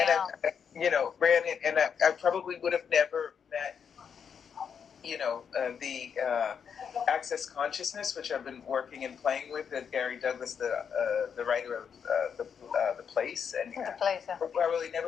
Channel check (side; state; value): right; quieter; 7.1 dB